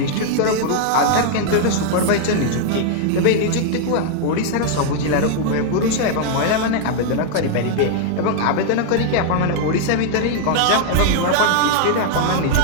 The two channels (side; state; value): both; different; correlation 0.00